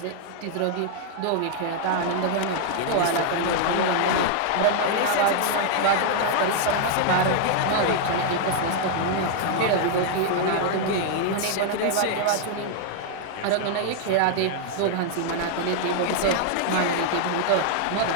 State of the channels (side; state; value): both; different; correlation 0.00